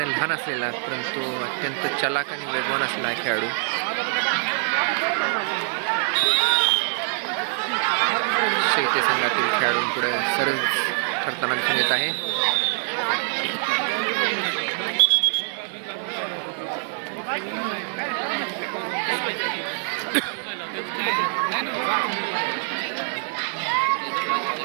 लहान असलेला परंतु अत्यंत चलाक आणि वेगवान असलेला खेळाडू. शेवते संघातील खेळाडूंपुढे सरळ ठरताना दिसून येत आहे.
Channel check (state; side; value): silent; left; 56 dB below the other